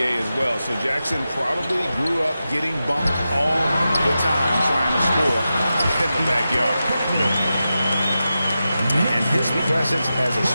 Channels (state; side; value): inverted; both; correlation -0.91